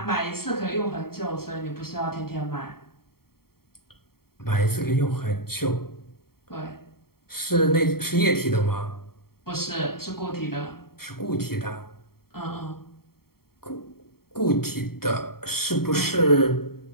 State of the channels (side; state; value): right; late; 0.94 ms